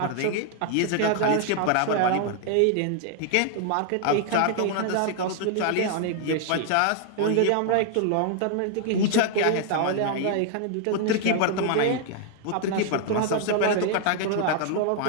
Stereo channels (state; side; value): different; both; correlation 0.00